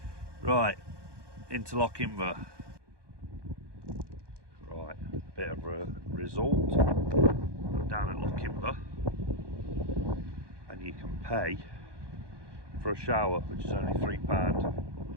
Right, into Lochinver. Right, a bit of a result. I'm down at Lochinver, and you can pay for a shower, which is only £3.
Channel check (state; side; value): late; left; 1.2 ms